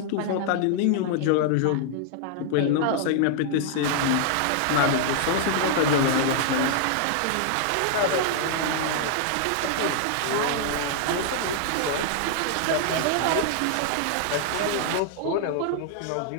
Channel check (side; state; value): both; different; correlation 0.00